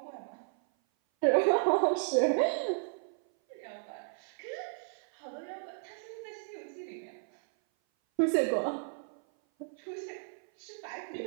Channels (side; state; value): left; silent; 55 dB below the other